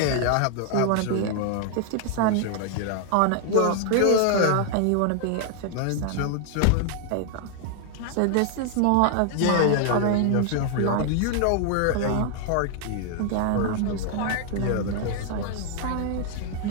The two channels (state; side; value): different; both; correlation 0.00